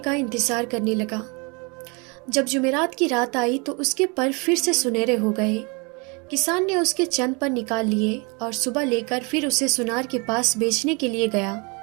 انتظار کرنے لگا۔ جب جمعرات کی رات آئی تو اس کے پر پھر سے سنہرے ہو گئے۔ کسان نے اس کے چند پر نکال لیے اور صبح لے کر پھر اسے سنار کے پاس بیچنے کے لیے گیا۔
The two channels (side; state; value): left; quieter; 30.6 dB